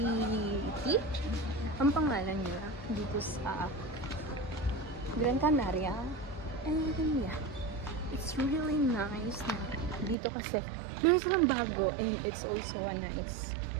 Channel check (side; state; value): left; drops out; at 10.2 s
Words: Ang pangalan niya dito sa Gran Canaria. And yeah, it's really nice na dito kasi meron silang bago, and it's also a nice